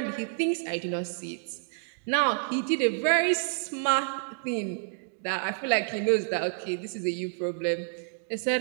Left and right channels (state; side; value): silent; left; digital silence